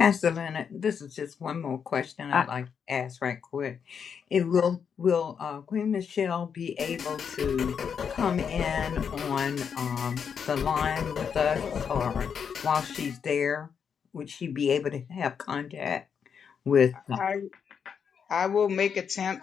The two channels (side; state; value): right; quieter; 7.0 dB